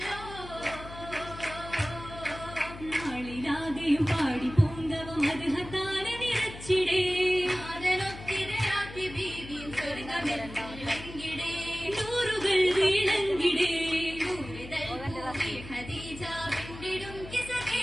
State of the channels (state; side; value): noise; left; hum, 14 dB below the sound